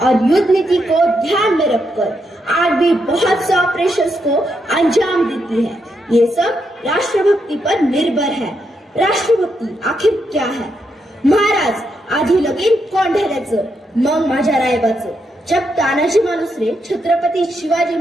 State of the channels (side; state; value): both; normal; correlation 0.81